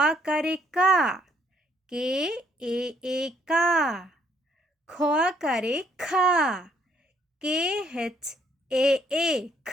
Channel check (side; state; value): both; normal; correlation 0.67